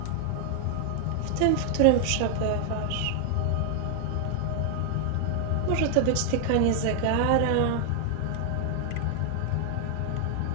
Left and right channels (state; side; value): different; both; correlation 0.00